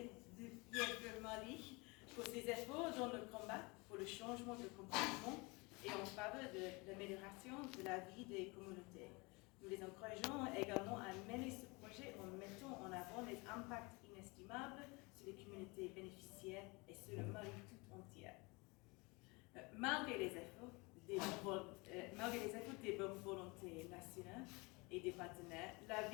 Mali pour ses efforts dans le combat pour le changement de comportement et en faveur de l'amélioration de la vie des communautés. Nous les encourageons également à mener ce projet en mettant en avant les impacts inestimables sur les communautés bénéficiaires et sur le Mali tout entier. Malgré les efforts des bonnes volontés nationales et des partenaires, la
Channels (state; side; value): quieter; right; 26.9 dB